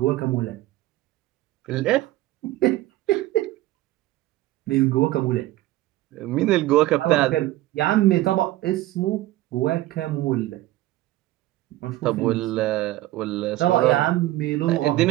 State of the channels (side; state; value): left; quieter; 16.2 dB